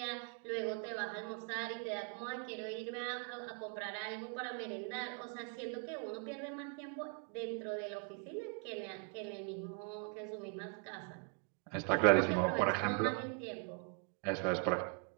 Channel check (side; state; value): left; quieter; 38.2 dB